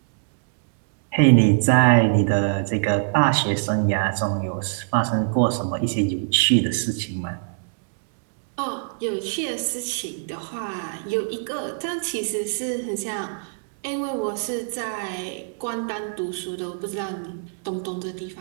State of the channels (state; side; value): silent; left; digital silence